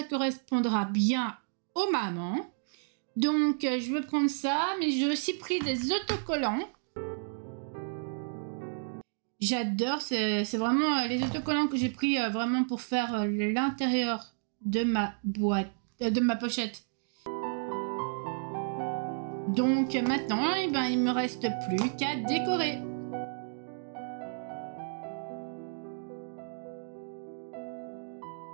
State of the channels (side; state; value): left; silent; digital silence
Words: correspondra bien aux mamans. Donc je vais prendre ça, mais j'ai aussi pris des autocollants. J'adore, c'est vraiment les autocollants que j'ai pris vraiment pour faire l'intérieur de ma boîte, de ma pochette. Donc maintenant, eh ben, il me reste plus qu'à décorer.